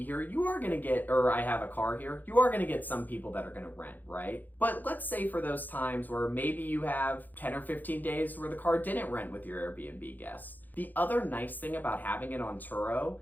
here, you are going to get, or I have a car here, you are going to get some people that are going to rent, right? But let's say for those times where maybe you have 10 or 15 days where the car didn't rent with your Airbnb guests. The other nice thing about having it on Turo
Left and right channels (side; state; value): right; late; 0.085 ms